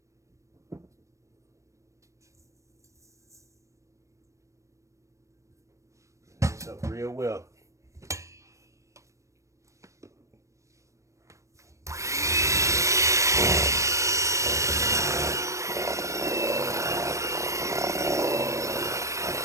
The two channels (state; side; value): late; left; 0.15 ms